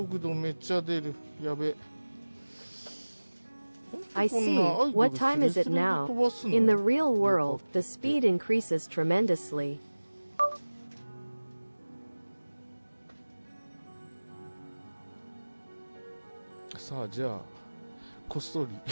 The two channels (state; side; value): inverted; both; correlation -1.00